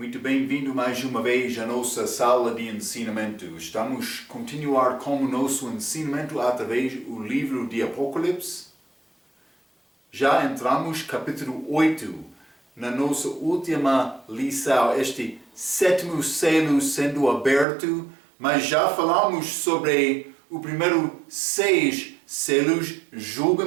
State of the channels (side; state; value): left; drops out; at 17.7 s